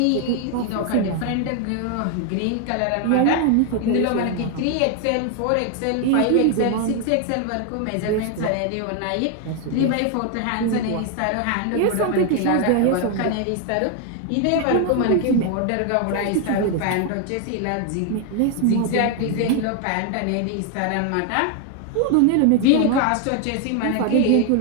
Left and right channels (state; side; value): different; both; correlation 0.00